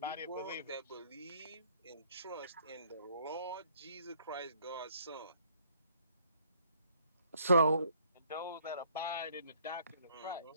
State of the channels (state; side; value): inverted; both; correlation -0.62